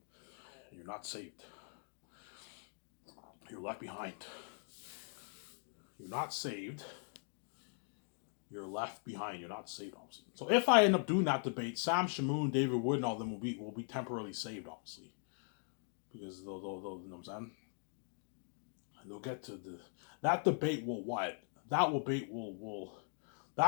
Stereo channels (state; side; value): silent; right; 51 dB below the other